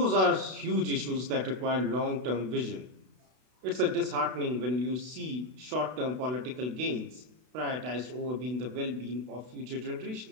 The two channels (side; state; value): left; late; 32 ms